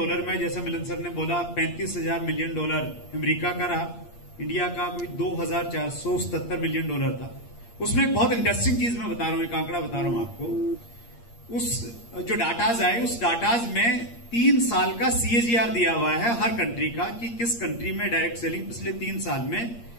में जैसा मिलन सर ने बोला 35,000 मिलियन डॉलर अमेरिका का रहा, इंडिया का कोई 2,477 मिलियन डॉलर था। उसमें एक बहुत इंटरेस्टिंग चीज मैं बता रहा हूं, एक आंकड़ा बता रहा हूं आपको। उस जो डाटाज आए उस डाटाज में 3 साल का CAGR दिया हुआ है हर कंट्री का कि किस कंट्री में डायरेक्ट सेलिंग पिछले 3 साल में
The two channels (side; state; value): right; late; 8.6 ms